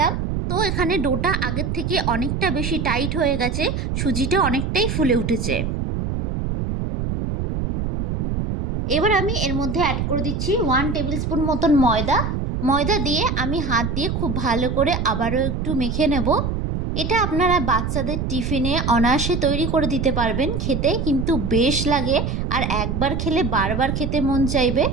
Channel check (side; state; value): right; noise; rumble, 2 dB below the sound